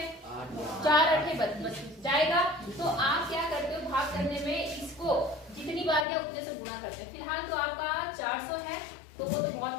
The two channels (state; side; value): drops out; right; at 6.1 s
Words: 4 8 32 जाएगा। तो आप क्या करते हो भाग करने में, इसको जितनी बार या उतने से गुणा करते हैं। फिलहाल तो आपका 400 है तो वो तो